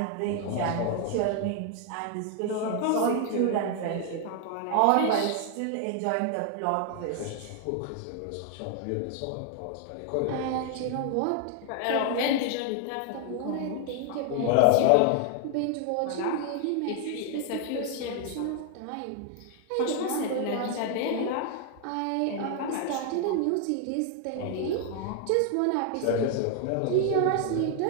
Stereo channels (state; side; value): different; both; correlation 0.00